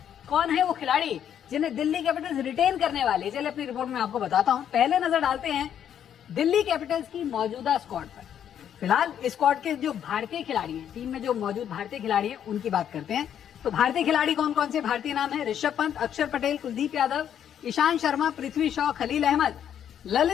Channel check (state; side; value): quieter; right; 9.4 dB